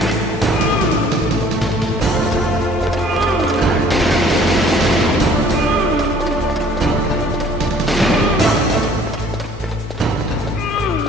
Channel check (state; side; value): normal; both; correlation 0.55